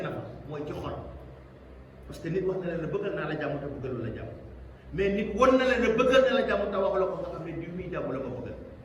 na fa mooy ci xol. parce que nit wax na leen ne bëggal naa la jàmm te bëggalu la jàmm, mais nit won na leen ne bëggal na la jàmm te waxu la ko nga xam ne diw muy jàmm la ma bëggal.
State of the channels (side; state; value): both; identical; correlation 1.00